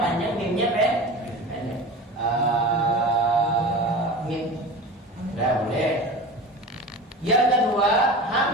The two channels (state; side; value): normal; both; correlation 0.33